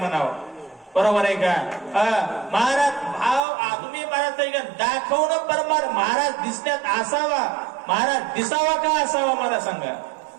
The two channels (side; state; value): left; drops out; at 3.4 s